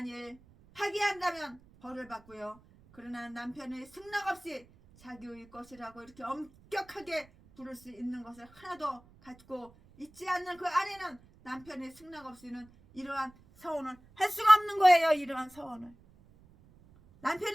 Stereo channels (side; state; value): right; noise; rumble, 26 dB below the sound